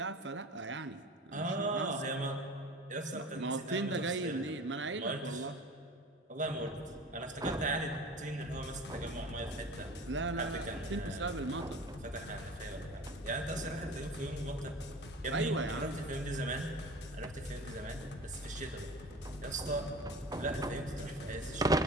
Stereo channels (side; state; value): both; normal; correlation 0.38